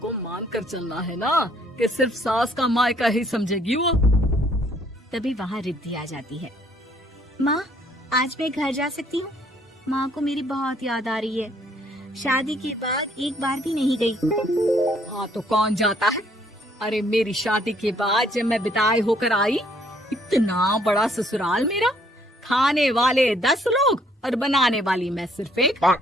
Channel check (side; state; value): both; normal; correlation 0.65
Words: मान कर चलना है ना, कि सिर्फ सास का मायका ही समझेगी वो। तभी वहाँ रिद्धि आ जाती है। माँ, आज मैं घर जा सकती हूँ? माँ को मेरी बहुत याद आ रही है। शादी के बाद एक बार भी नहीं गई। हाँ तो कौन जाता है। अरे मेरी शादी के बाद जब मैं विदाई होकर आई, इतना बड़ा ससुराल मेरा, खाने वाले 10 लोग और बनाने वाली मैं सिर्फ एक।